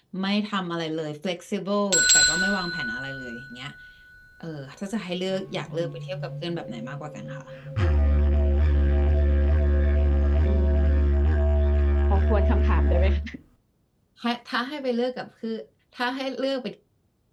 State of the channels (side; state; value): both; identical; correlation 1.00